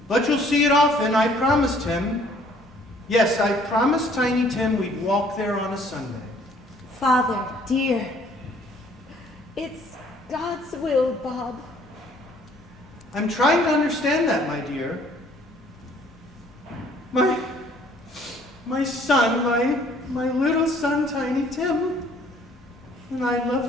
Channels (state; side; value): normal; both; correlation 0.59